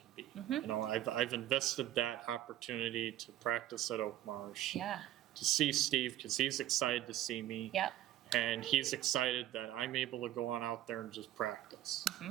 be. I've invested that opportunity to practice at Oak Marsh, yeah, to see Steve because he's excited to see me. yeah, And he's excited that I'm able to go on out there and just practice.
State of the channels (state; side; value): quieter; left; 13.1 dB